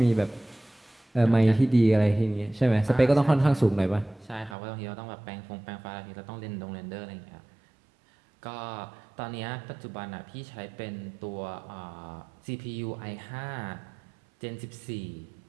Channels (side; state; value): left; drops out; at 4.5 s